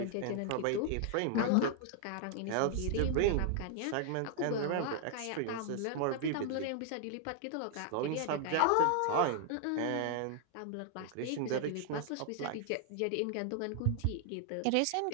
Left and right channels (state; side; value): different; both; correlation -0.01